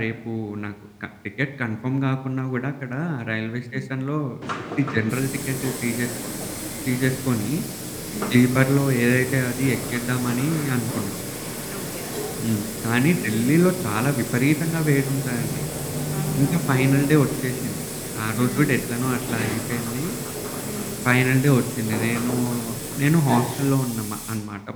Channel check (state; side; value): identical; both; correlation 1.00